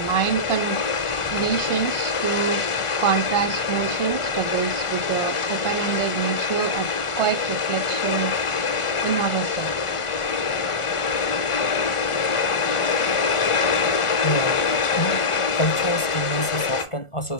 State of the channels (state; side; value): late; right; 1.4 ms